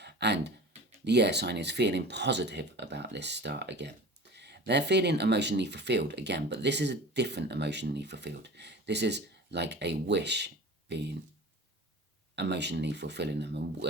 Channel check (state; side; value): normal; both; correlation 0.38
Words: And the air sign is feeling positive about this start again. They're feeling emotionally fulfilled again, but this is a different emotionally fulfilled. This is like a wish being emotionally fulfilling them,